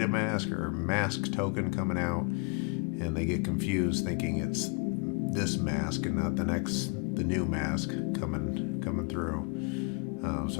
or Mask token coming out, and they get confused thinking it's this mask and not the new mask coming through.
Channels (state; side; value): quieter; right; 32.7 dB